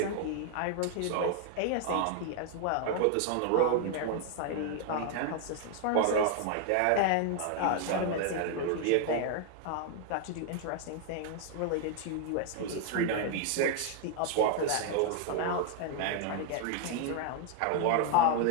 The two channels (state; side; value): different; both; correlation 0.00